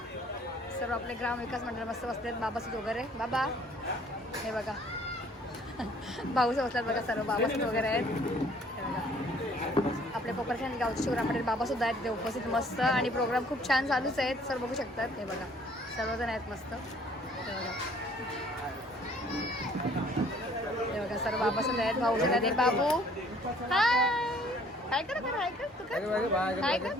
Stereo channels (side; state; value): both; normal; correlation 0.58